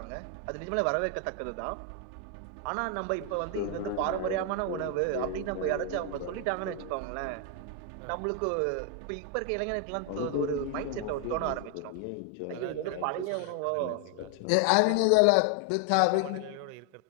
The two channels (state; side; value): different; both; correlation 0.00